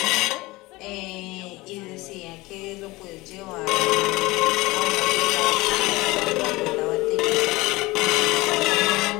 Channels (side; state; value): right; quieter; 21.1 dB